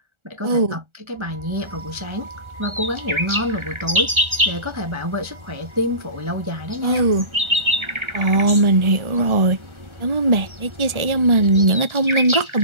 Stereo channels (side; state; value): left; late; 1.4 ms